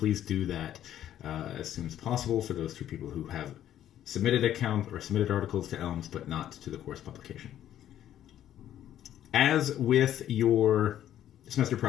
do that as soon as possible for those 2 people who have submitted account or submitted articles to Elms but not to the course publication. As with your semester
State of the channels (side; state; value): right; quieter; 11.5 dB